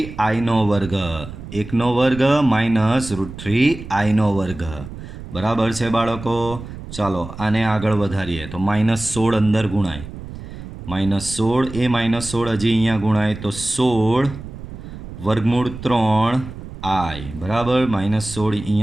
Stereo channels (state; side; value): noise; right; rumble, 12 dB below the sound